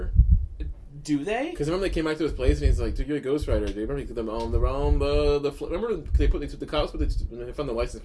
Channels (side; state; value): both; identical; correlation 1.00